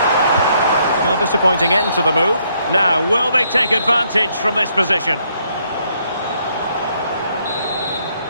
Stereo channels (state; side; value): inverted; both; correlation -0.71